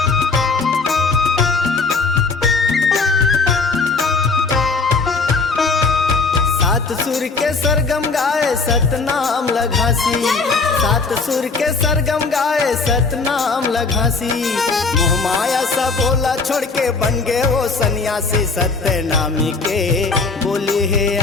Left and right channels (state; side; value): quieter; right; 4.2 dB